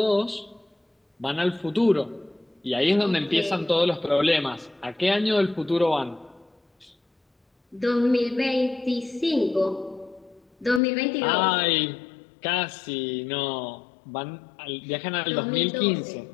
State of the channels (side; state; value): right; drops out; at 10.8 s